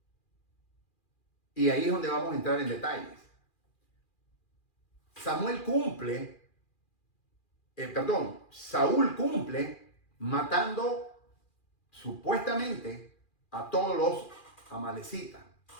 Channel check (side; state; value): right; late; 2.4 ms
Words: Y ahí es donde vamos a entrar en detalles. Saúl cumple matando supuestamente a todos los amalecitas,